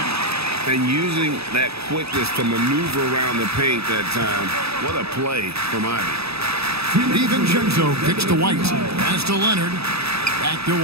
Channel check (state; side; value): late; left; 0.78 ms